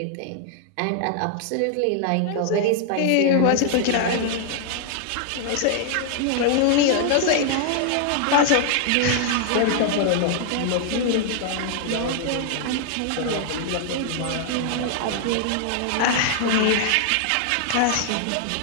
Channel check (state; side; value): different; both; correlation 0.00